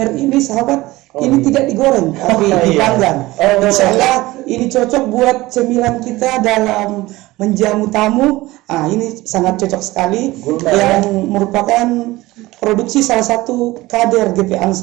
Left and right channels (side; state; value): left; quieter; 19.0 dB